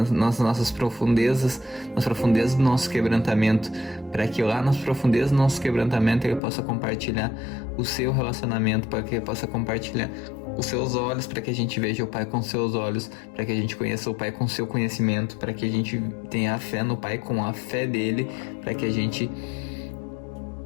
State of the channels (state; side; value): drops out; right; at 6.4 s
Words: nossas profundezas, nas profundezas do nosso quebrantamento, para que lá nas profundezas do nosso quebrantamento ele possa compartilhar o seu relacionamento, para que ele possa compartilhar os seus olhos, para que a gente veja o Pai com seus olhos, para que a gente conheça o Pai com seu conhecimento, para que a gente tenha a fé no Pai com a fé dele, para que a gente